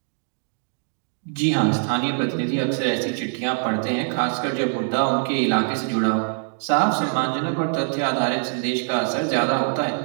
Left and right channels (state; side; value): silent; left; digital silence